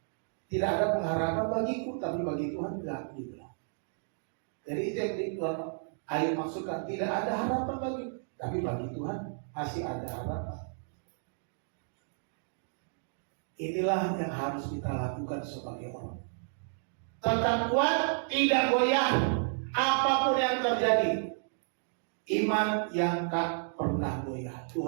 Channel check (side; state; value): left; silent; digital silence